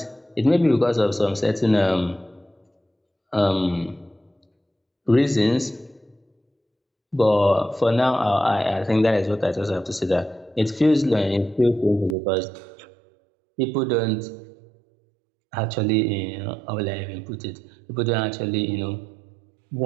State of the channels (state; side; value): drops out; left; at 12.2 s